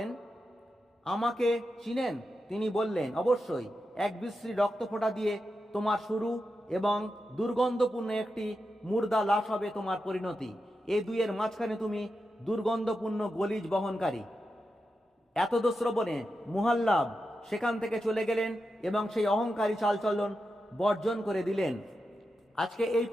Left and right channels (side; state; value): both; normal; correlation 0.89